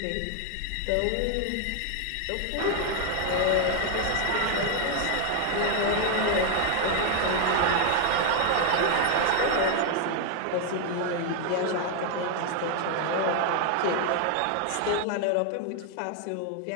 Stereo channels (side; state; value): both; different; correlation 0.00